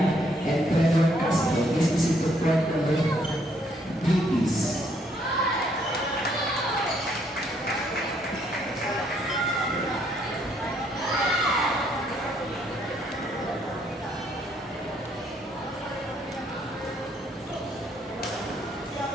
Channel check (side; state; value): both; normal; correlation 0.69